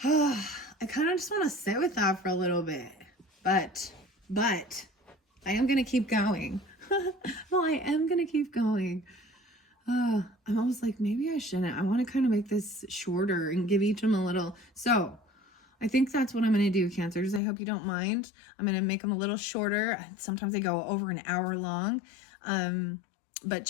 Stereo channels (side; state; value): right; drops out; at 17.4 s